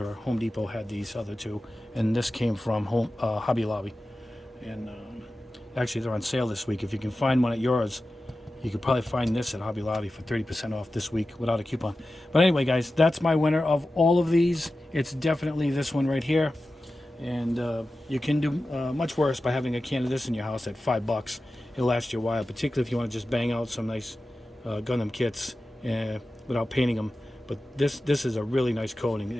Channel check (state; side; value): normal; both; correlation 0.94